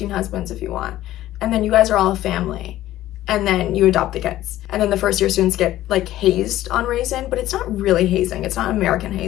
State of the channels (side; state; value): right; quieter; 14.3 dB